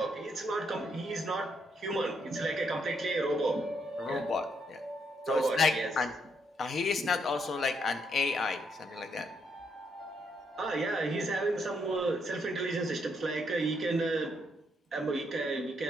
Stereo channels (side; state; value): both; normal; correlation 0.75